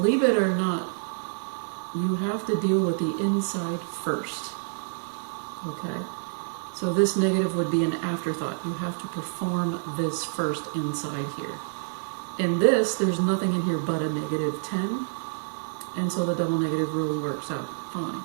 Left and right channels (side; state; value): left; silent; 60 dB below the other